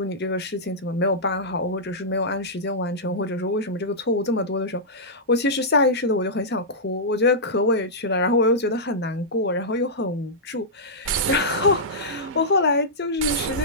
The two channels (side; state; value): both; normal; correlation -0.12